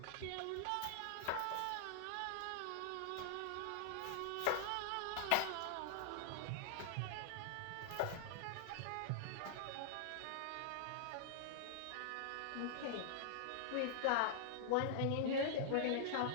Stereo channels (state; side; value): different; both; correlation -0.01